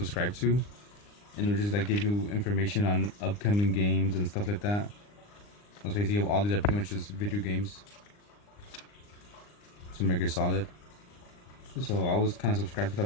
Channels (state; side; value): late; right; 39 ms